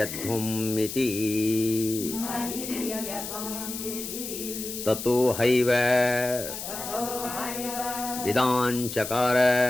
इति ततो हैव विदाञ्चकार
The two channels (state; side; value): noise; left; hiss, 7 dB below the sound